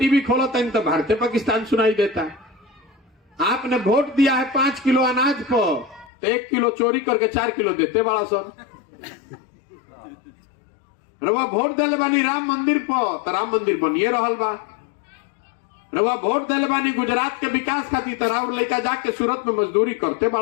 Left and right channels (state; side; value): drops out; right; at 6.1 s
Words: खोलता है तो भारतीय पाकिस्तान सुनाई देता है। आपने वोट दिया है 5 किलो अनाज पर, तो 1 किलो चोरी करके 4 किलो देते बड़ा सन। रउआ वोट देले बानी राम मंदिर पर, तो राम मंदिर बनिए रहल बा। रउआ वोट देले बानी गुजरात के विकास खातिर, तो राउर लड़का जाके सूरत में मजदूरी करते